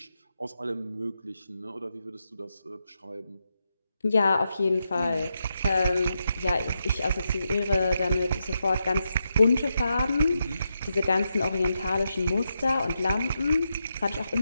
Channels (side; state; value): both; inverted; correlation -0.85